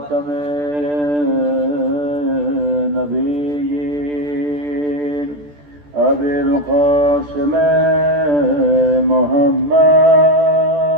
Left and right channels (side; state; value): left; late; 14 ms